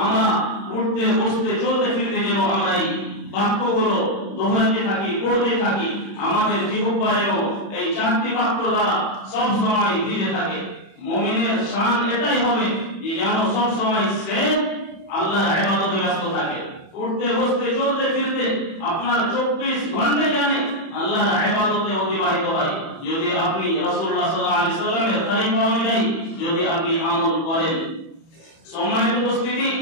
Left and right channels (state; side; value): late; right; 31 ms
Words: আমরা উঠতে বসতে চলতে ফিরতে যেন আমরা এই বাক্যগুলো দোহরাতে থাকি, পড়তে থাকি, আমাদের জিহ্বায়ও এই চারটি বাক্য দ্বারা সব সময় ভিজে থাকে। মুমিনের শান এটাই হবে যে যেন সব সময় সে আল্লাহর ইবাদতে ব্যস্ত থাকে। উঠতে বসতে চলতে ফিরতে আপনার 24 ঘন্টা জানে আল্লাহর ইবাদতে অতিবাহিত হয়, যদি আপনি রাসূলুল্লাহ সাল্লাল্লাহু আলাইহি সাল্লামের তরিকা অনুযায়ী যদি আপনি আমল করেন। সম্মানিত উপস্থিতি,